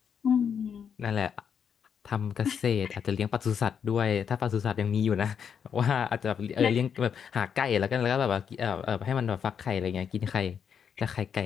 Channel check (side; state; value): right; quieter; 7.4 dB